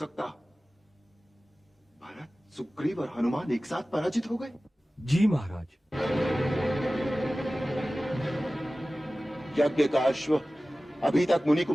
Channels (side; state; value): both; normal; correlation 0.97